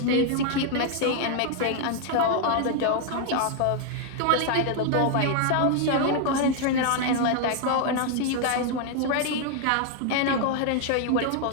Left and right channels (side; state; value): both; different; correlation 0.00